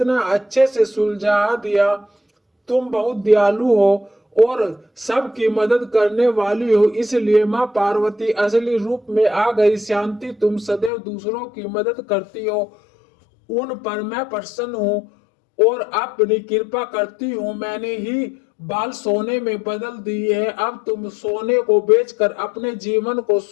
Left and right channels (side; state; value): right; drops out; at 10.9 s